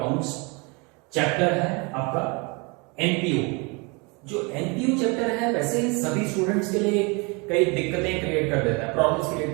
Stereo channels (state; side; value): quieter; left; 29.6 dB